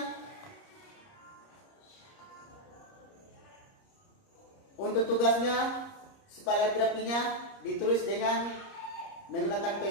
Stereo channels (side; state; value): right; late; 30 ms